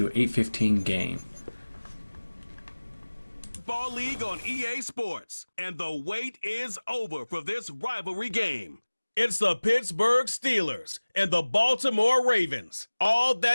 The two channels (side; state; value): both; inverted; correlation -1.00